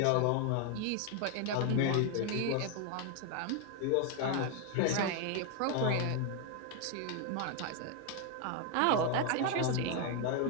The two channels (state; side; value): different; both; correlation 0.01